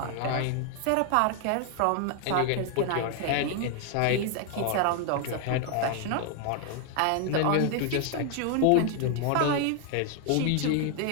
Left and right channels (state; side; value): different; both; correlation 0.00